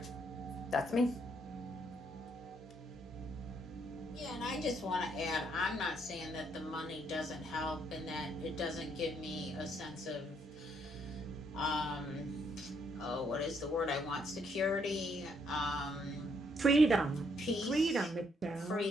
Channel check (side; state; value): both; normal; correlation 0.72